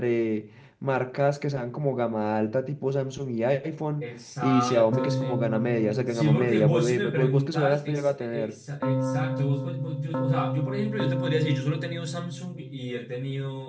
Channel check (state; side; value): identical; both; correlation 1.00